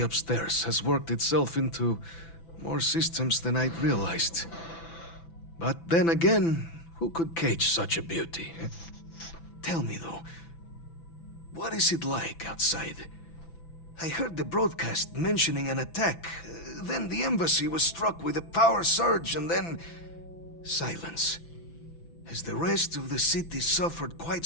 upstairs has worked itself into more systems than I'd realized. But then again, who could cage such a beauty? Tell me though, what is it like outside? I heard the broadcast mentioning an attack. Then the embassy was struck with a power surge, and then silence. Has the rest of the city suffered quite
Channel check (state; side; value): late; right; 6.0 ms